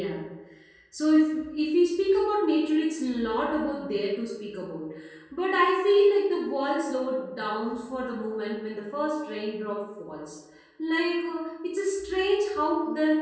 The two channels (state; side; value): identical; both; correlation 1.00